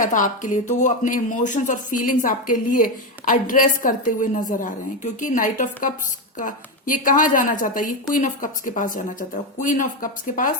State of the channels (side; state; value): both; normal; correlation 0.11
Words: था आपके लिए, तो वो अपने इमोशंस और फीलिंग्स आपके लिए एड्रेस करते हुए नजर आ रहे हैं। क्योंकि नाइट ऑफ कप्स का ये कहाँ जाना चाहता है, ये क्वीन ऑफ कप्स के पास जाना चाहता है। क्वीन ऑफ कप्स के